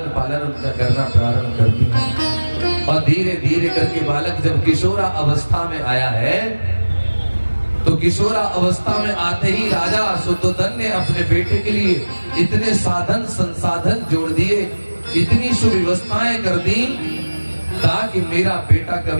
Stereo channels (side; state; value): both; inverted; correlation -1.00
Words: पालन उनका करना प्रारंभ करती है। और धीरे धीरे करके बालक जब किशोरा अवस्था में आया है, तो किशोरा अवस्था में आते ही राजा शुद्धोधन ने अपने बेटे के लिए इतने साधन संसाधन जोड़ दिए, इतनी सुव्यवस्थाएं कर दी, ताकि मेरा बेटा